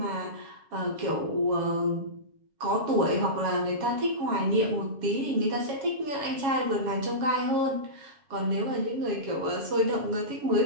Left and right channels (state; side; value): late; left; 7.2 ms